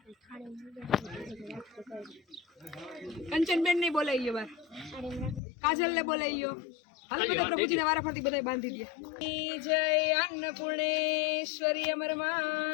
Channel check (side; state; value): right; drops out; at 5.4 s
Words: કંચનબેન ને બોલાઈ ગયો બાર. કાજલ ને બોલાઈ ગયો. હાલો બધા પ્રભુજી ને વારાફરતી બધા બાંધી દે. જય अन्नपूर्णेश्वरी अमर